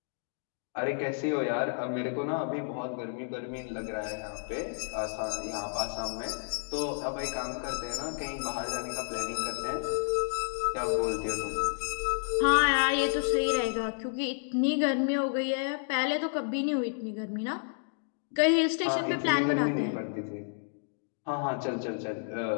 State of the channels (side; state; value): right; silent; digital silence